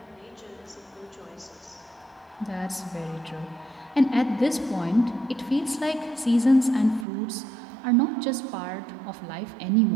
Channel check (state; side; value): drops out; left; at 7.1 s